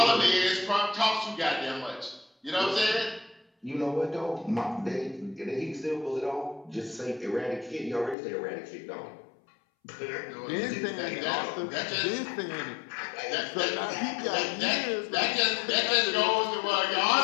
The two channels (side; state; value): right; drops out; at 8.2 s